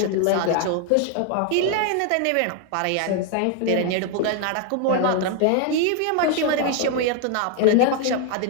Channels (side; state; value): both; different; correlation 0.00